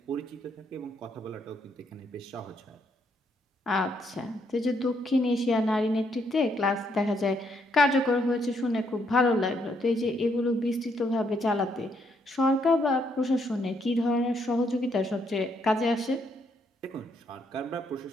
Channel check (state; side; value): normal; both; correlation 0.73